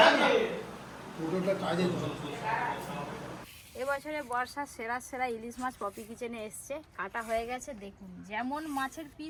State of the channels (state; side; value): identical; both; correlation 1.00